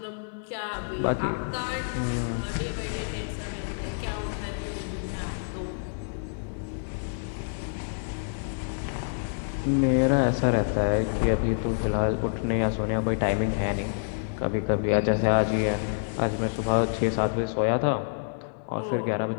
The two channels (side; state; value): right; silent; 60 dB below the other